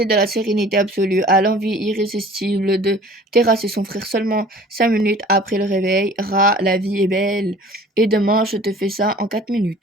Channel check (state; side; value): normal; both; correlation 0.47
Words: de la sérénité absolue à l'envie irrésistible de terrasser son frère seulement 5 minutes après le réveil. La vie est belle. Et demain, je te fais ça en 4